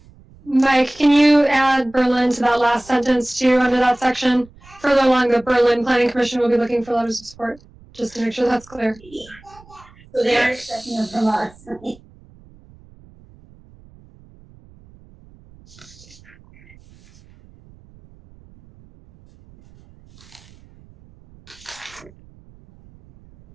Mike, can you add Berlin to that last sentence too, under that section? Further along, the Berlin Planning Commission will be looking for letters of support, just to make sure that's clear. So they are expecting them from us.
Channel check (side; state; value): right; noise; rumble, 25 dB below the sound